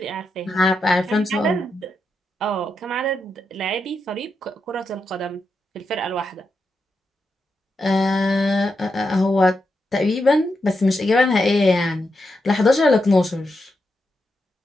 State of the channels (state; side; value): normal; both; correlation 0.85